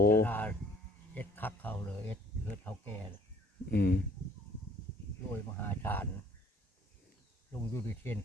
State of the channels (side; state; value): both; normal; correlation 0.57